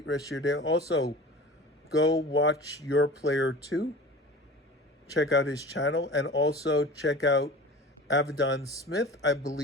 rest of your day. Also, go watch Your Player 2. Check out his channel, and also check out Avedon Smith. I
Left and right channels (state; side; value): normal; both; correlation 0.38